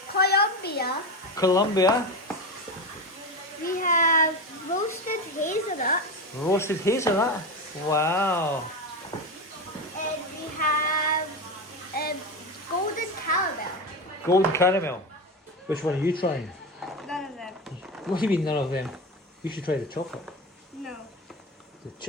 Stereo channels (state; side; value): normal; both; correlation 0.20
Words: Colombia. Colombia. We have roasted hazelnut. Roasted hazelnut. Wow. And we have golden caramel. Golden caramel. Which one are you trying? None of them. What do you mean none of them? You should try the chocolate. No. The